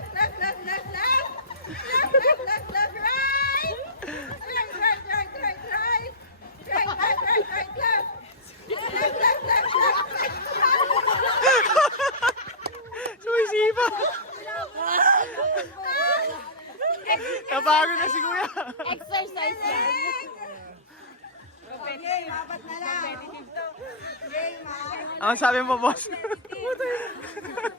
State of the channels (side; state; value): both; normal; correlation -0.19